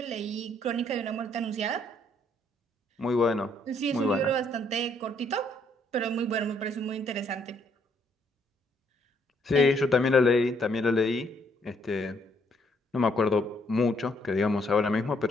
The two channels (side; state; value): both; normal; correlation 0.69